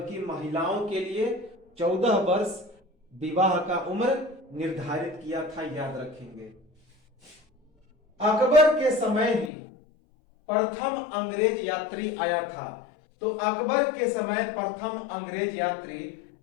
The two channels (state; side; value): drops out; right; at 9.5 s